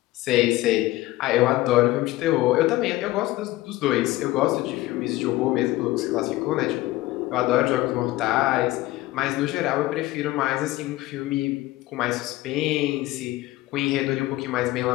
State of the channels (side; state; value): right; quieter; 17.6 dB